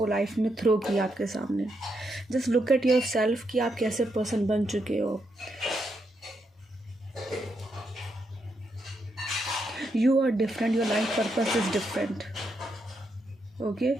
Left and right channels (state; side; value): normal; both; correlation 0.80